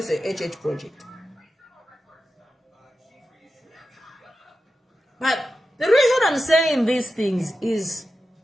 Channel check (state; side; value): normal; both; correlation 0.92